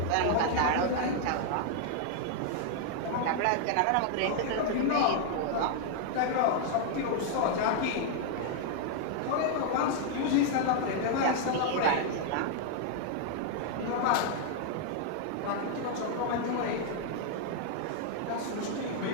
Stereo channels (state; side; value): different; both; correlation 0.00